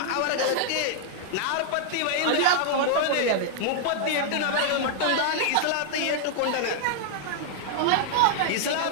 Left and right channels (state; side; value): different; both; correlation 0.00